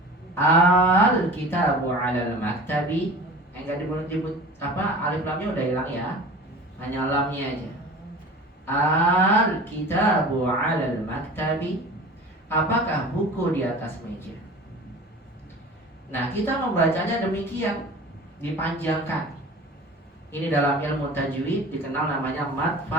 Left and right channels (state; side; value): normal; both; correlation 0.39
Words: Al-kitabu 'alal maktabi. Enggak disebut apa, alif lamnya udah hilang ya. Hanya lamnya aja. Al-kitabu 'alal maktabi. Apakah buku di atas meja? Nah, kita membacanya demikian, dipanjangkan. Ini dalam ilmu tajwid dikenal namanya mad